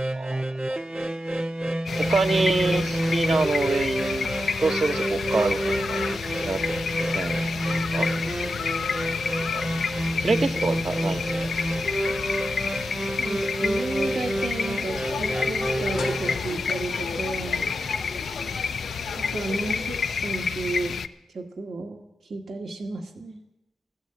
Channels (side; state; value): both; normal; correlation 0.88